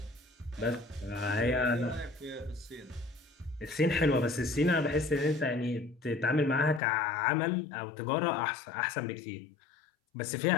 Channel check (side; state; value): right; drops out; at 6.8 s